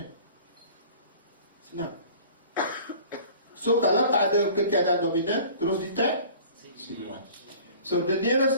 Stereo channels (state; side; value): inverted; both; correlation -0.46